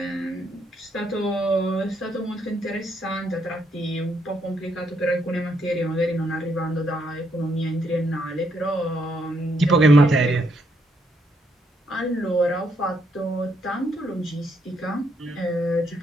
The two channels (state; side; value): normal; both; correlation 0.74